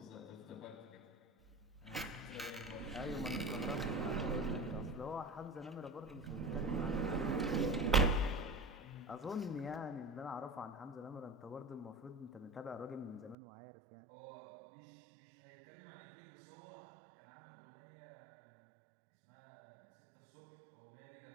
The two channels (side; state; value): left; drops out; at 13.4 s